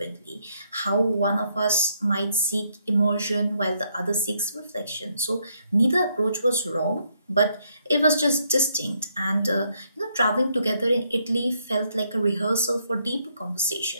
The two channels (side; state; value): both; inverted; correlation -0.73